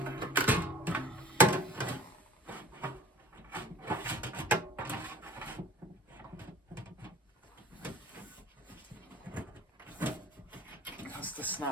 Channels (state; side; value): normal; both; correlation 0.46